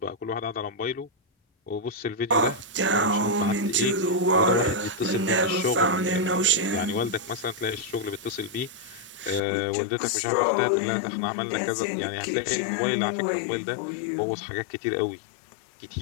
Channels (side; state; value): right; drops out; at 9.4 s